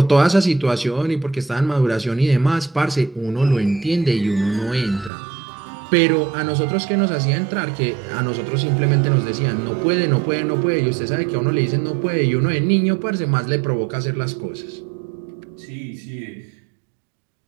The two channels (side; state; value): left; drops out; at 5.1 s